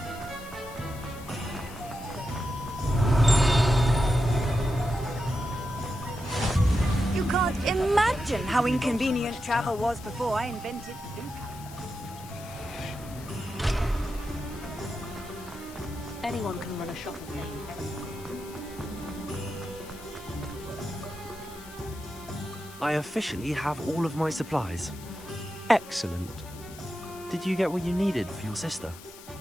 You can't imagine how inconvenient travel was before I invented food. Anyone can run a shop with me. I officially have all of my supplies. Excellent. Did you get what you needed for your sister?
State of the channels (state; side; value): noise; left; hiss, 18 dB below the sound